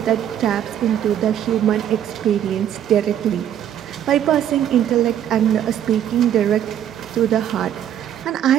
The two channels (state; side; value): quieter; left; 10.3 dB